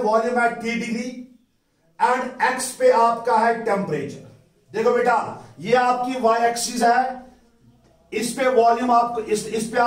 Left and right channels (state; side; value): identical; both; correlation 1.00